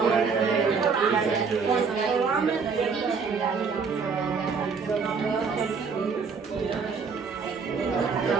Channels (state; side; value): quieter; left; 5.3 dB